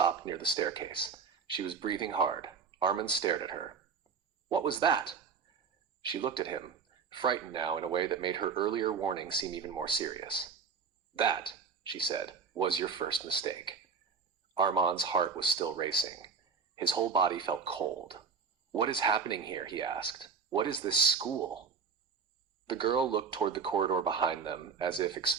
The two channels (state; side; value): quieter; left; 5.7 dB